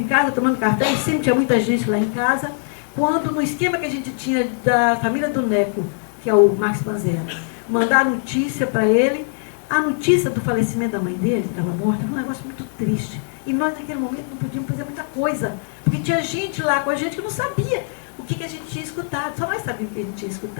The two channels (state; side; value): silent; right; 65 dB below the other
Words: casa tomando café, e sempre tinha muita gente lá em casa, quando no esquema que a gente tinha da família do Neco, que é o Marcos Panzera, mandar notícia para ele, a notícia do falecimento da mãe dele, que estava morta, foi um negócio muito triste. E nós, naquele momento, não podíamos fazer muita coisa, porque tinha gente lá com a gente que não sabia o que a gente tinha escutado, só nós sabíamos o que a gente tinha